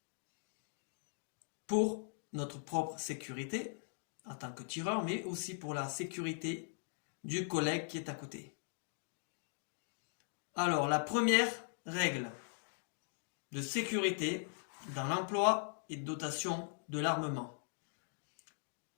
pour notre propre sécurité en tant que tireur, mais aussi pour la sécurité du collègue qui est à côté. Alors, la première règle de sécurité dans l'emploi et dotation de l'armement.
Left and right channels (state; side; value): silent; right; digital silence